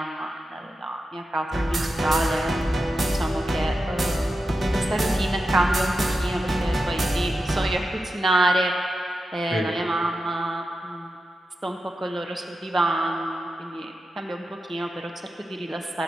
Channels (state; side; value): normal; both; correlation 0.90